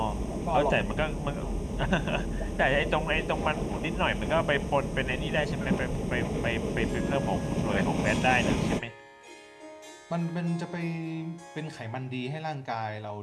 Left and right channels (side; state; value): both; identical; correlation 1.00